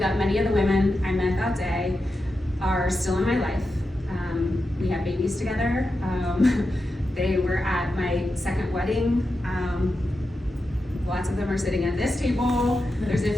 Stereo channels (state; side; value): normal; both; correlation 0.89